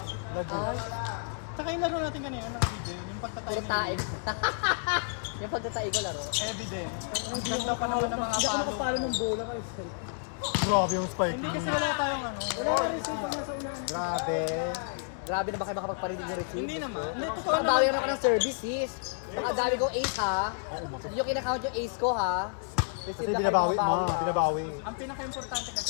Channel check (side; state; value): right; silent; digital silence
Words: Saka yung laro natin kanina, nakabidyo. Yung pagtatay puro taig. Yung pagtatay ko laro. Evidence. Ang ganda pa naman ng mga palo. Grabe yung spike. Hindi kasi wala tayong ano. Grabe. Grabe na ba kayo makapagparinig ng receipt? Hindi naman. Hindi, totoo naman. Bawi na ka ng services. Baka dami kong ace ha. Hindi yung kinakount yung ace ko ha. Kasi binabawi, ma. Binabawi. Ang pinaka-importante kasi